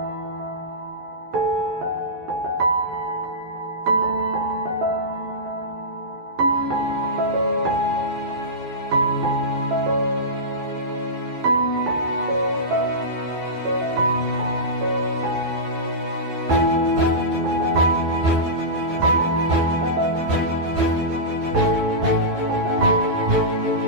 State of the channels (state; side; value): late; left; 12 ms